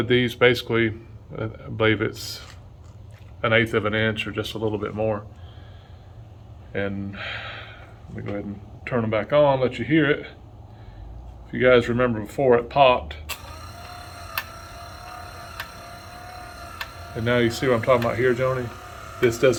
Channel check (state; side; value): identical; both; correlation 1.00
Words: these basically, I believe it's 1/8 of an inch or just a little bit more. And let me go ahead and turn them back on, let you hear it. If you guys remember before it popped. And now you see what I'm talking about here, Joni? This